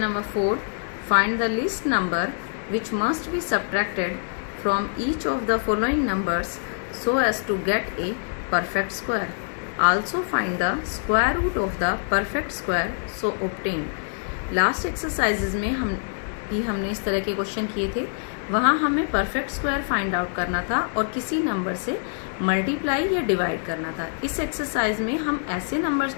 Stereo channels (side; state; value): right; silent; digital silence